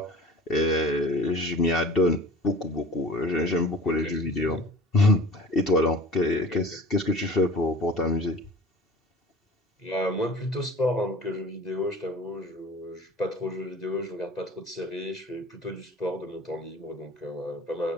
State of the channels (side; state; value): both; normal; correlation 0.42